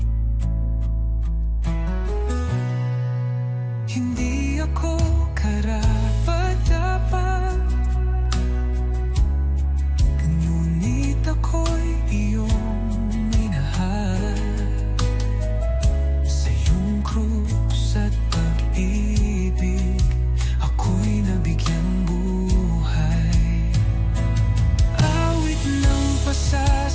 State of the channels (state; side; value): identical; both; correlation 1.00